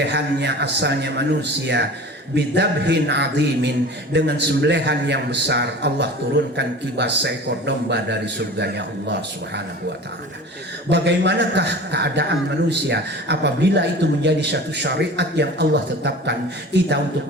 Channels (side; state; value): both; normal; correlation 0.38